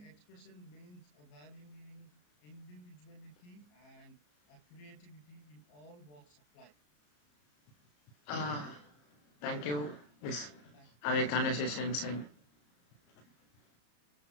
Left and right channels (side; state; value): right; late; 34 ms